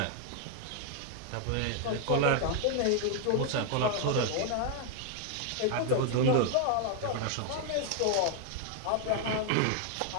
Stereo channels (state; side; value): different; both; correlation 0.00